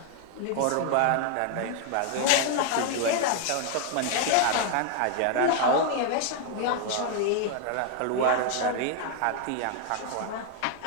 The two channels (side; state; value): both; different; correlation 0.00